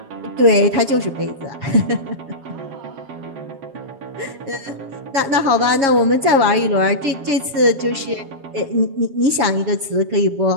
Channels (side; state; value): left; late; 7.3 ms